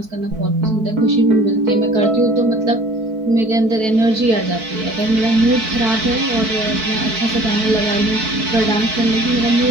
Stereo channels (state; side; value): late; left; 4.6 ms